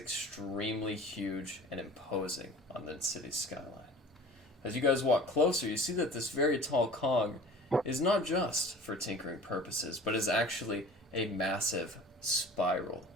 huge and imposing on the city's skyline. As you guys walk closer, you see that this very tall cog is not just for tinkering purposes, but is actually a massive spiral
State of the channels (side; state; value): both; normal; correlation 0.43